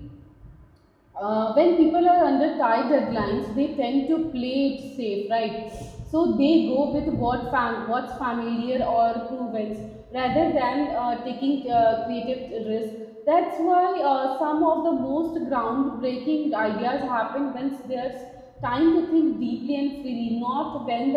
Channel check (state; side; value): identical; both; correlation 1.00